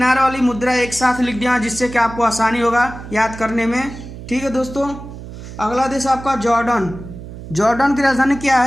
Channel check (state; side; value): noise; right; hum, 12 dB below the sound